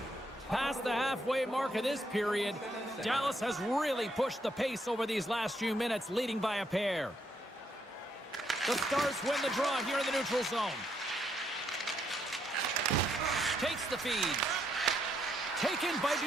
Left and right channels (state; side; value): normal; both; correlation 0.75